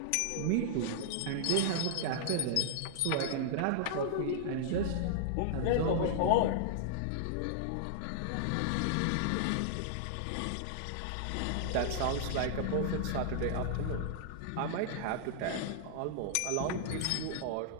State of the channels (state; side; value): different; both; correlation -0.01